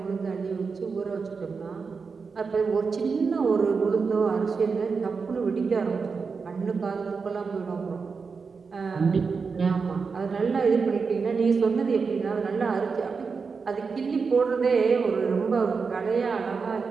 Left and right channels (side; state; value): left; quieter; 5.1 dB